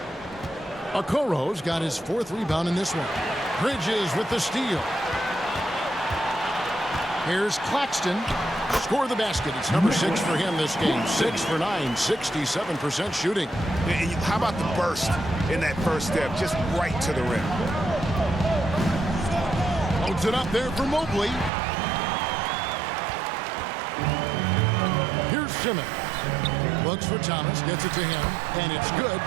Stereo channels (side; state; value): left; drops out; at 21.5 s